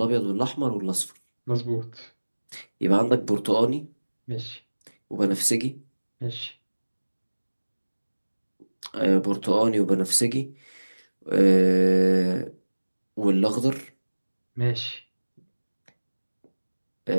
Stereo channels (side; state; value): both; inverted; correlation -1.00